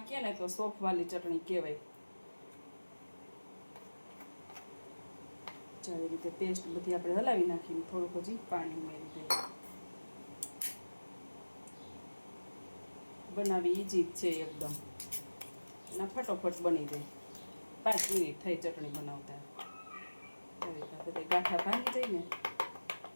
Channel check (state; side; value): inverted; both; correlation -1.00